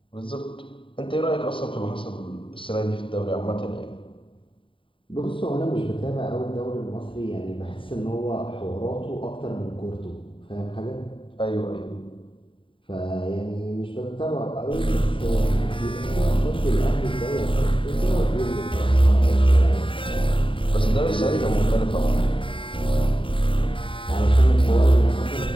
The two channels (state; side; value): late; right; 0.25 ms